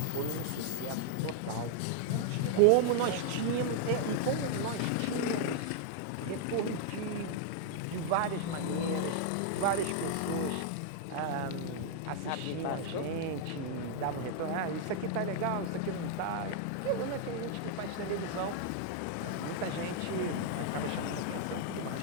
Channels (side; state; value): both; different; correlation 0.00